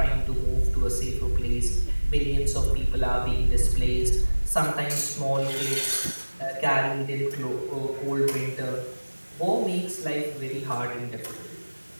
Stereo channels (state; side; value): inverted; both; correlation -1.00